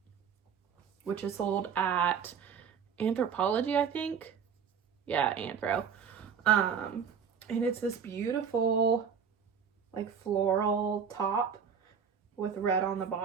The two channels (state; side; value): quieter; left; 7.0 dB